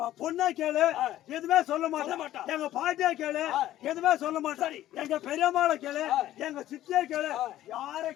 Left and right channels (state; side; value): quieter; right; 13.6 dB